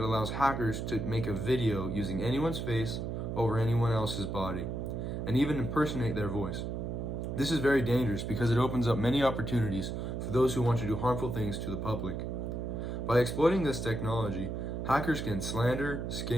hackers to make a video using anyone's face over anyone else's body, and even impersonate their voice. This is very dangerous because it opens up many opportunities for those who want to do harmful things to the public. By exploiting this technology, hackers can slander,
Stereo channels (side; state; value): right; noise; hum, 3 dB below the sound